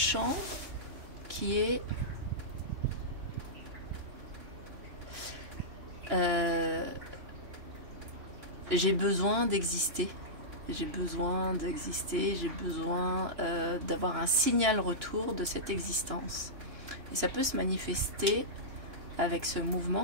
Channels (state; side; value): late; left; 2.9 ms